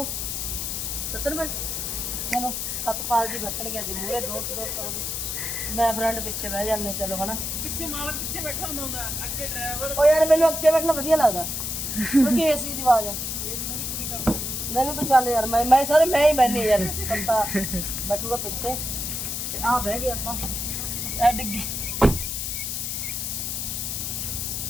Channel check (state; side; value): noise; left; hiss, 3 dB below the sound